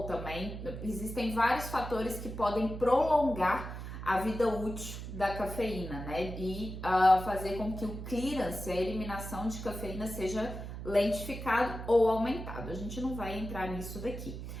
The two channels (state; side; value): noise; right; hum, 8 dB below the sound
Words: também. Existem vários fatores que podem prolongar a vida útil da cafeína, né? E fazer com que o clearance, a eliminação de cafeína, seja lentificado ou aumentado. A gente não vai entrar nisso daqui.